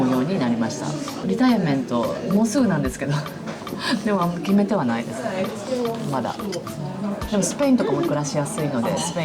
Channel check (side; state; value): both; identical; correlation 1.00